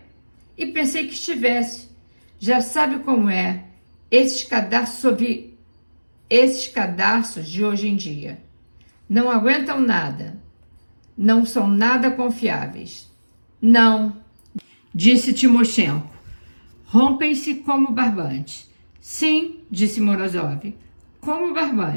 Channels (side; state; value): both; inverted; correlation -1.00